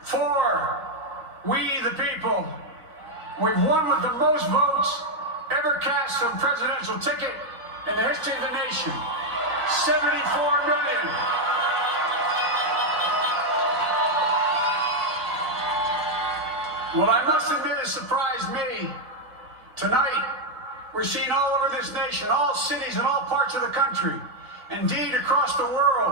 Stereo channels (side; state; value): left; late; 3.4 ms